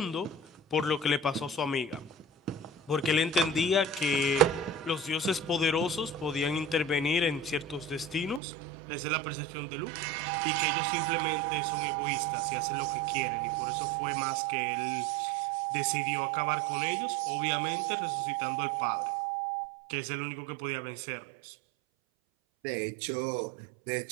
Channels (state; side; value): drops out; left; at 8.4 s